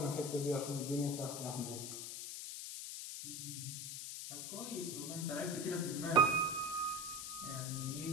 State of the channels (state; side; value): noise; left; hiss, 6 dB below the sound